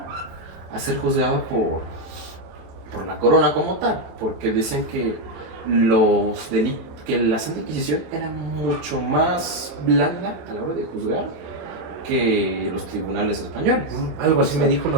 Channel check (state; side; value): late; left; 27 ms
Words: a ser juzgado por la corona como tal, porque decían que que la Santa Inquisición era mucho más blanda a la hora de juzgar que los tribunales españoles. Algo así me dijo